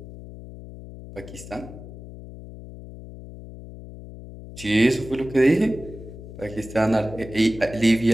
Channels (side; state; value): left; noise; hum, 14 dB below the sound